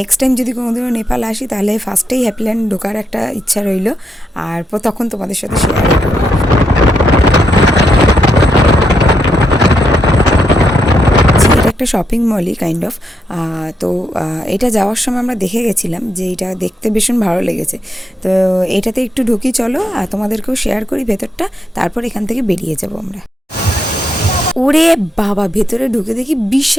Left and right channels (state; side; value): normal; both; correlation 0.80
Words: টাইম যদি কোনোদিনও নেপাল আসি তাহলে ফার্স্টেই হ্যাপিল্যান্ড ঢোকার একটা ইচ্ছা রইল, আর তখন তোমাদের সাথে শেয়ার করবো। একটা শপিং মলই কাইন্ড অফ, তো এটা যাওয়ার সময় আমরা দেখে গেছিলাম যে এটা দেখতে ভীষণ ভালো লেগেছে, তো এটাতে একটু ঢুকি চলো, আর তোমাদেরকেও শেয়ার করি ভেতরটা, তারপর এখান থেকে বেরিয়ে যাবো আমরা। ওরে বাবা, ভেতরে ঢুকে দেখি